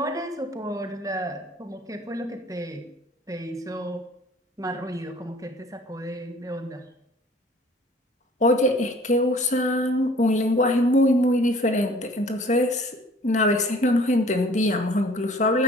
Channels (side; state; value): both; normal; correlation 0.52